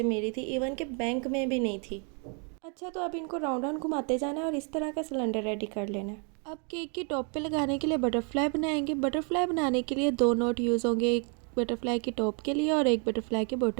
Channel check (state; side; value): quieter; left; 38.9 dB